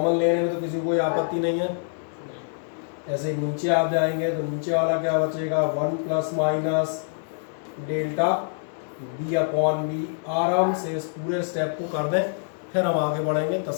लेने में तो किसी को कोई आपत्ति नहीं है। ऐसे ही नीचे आप जाएंगे तो नीचे वाला क्या बचेगा, 1 plus minus delta b upon B. आराम से इस पूरे स्टेप को कर दें, फिर हम आगे बढ़ेंगे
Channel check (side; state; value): right; silent; digital silence